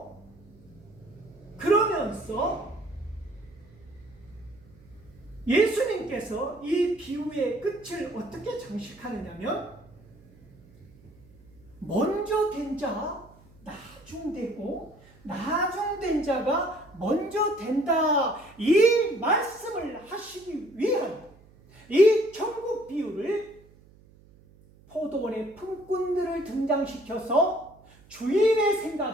그러면서 예수님께서 이 비유의 끝을 어떻게 장식하느냐면, 먼저 된 자 나중되고 나중된 자가 먼저 된다, 이 말씀을 하시기 위한 이 천국 비유를 포도원의 품꾼들을 등장시켜서 주인의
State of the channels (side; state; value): right; noise; hum, 26 dB below the sound